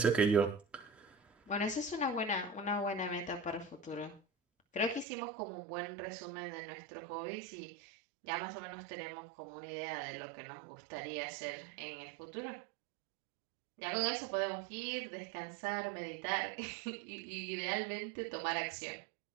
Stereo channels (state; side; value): drops out; left; at 5.1 s